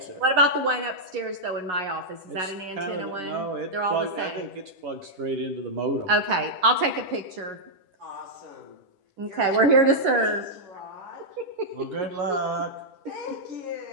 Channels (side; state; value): left; late; 11 ms